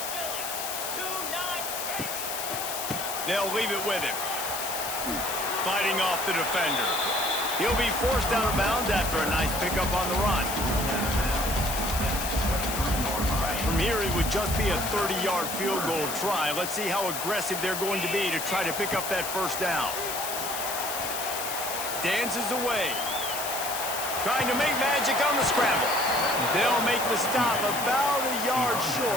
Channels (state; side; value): noise; left; hiss, 4 dB below the sound